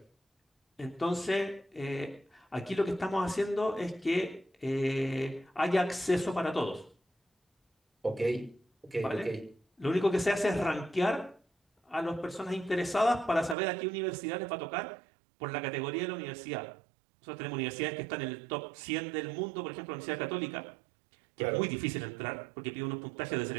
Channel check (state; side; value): drops out; left; at 13.6 s